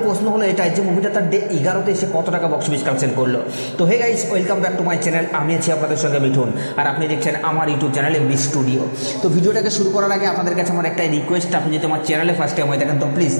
প্রশ্ন হলো এটাই যে মুভিটা তার ডে 11তে এসে কত টাকা বক্স অফিস কালেকশন করলো। তো hey guys, welcome back to my channel. আমি আছি আপনাদের সঙ্গে মিঠুন, আর আপনি দেখছেন আমার ইউটিউব চ্যানেল এমবি স্টুডিও। তো ভিডিওটাকে শুরু করার আগে আপনাদের কাছে আমার একটাই রিকোয়েস্ট, আপনি যদি আমার চ্যানেলে ফার্স্ট টাইম হয়ে থাকেন তো প্লিজ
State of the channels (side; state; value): both; inverted; correlation -1.00